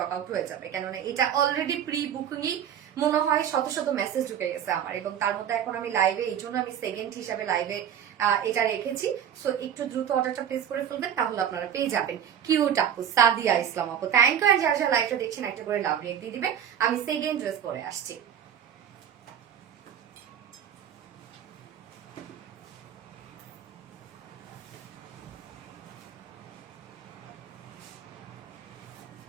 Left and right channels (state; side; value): quieter; left; 9.3 dB